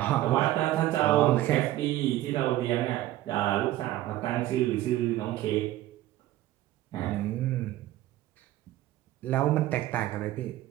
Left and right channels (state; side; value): quieter; left; 15.0 dB